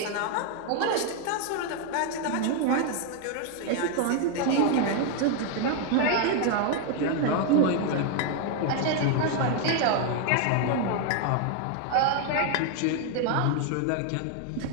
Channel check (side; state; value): both; different; correlation 0.01